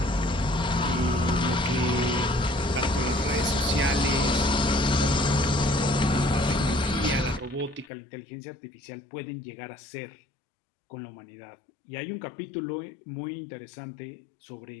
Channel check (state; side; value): drops out; right; at 7.9 s